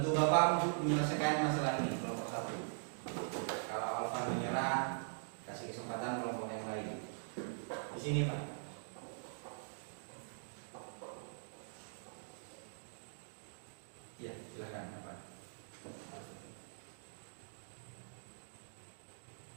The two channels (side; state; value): left; silent; digital silence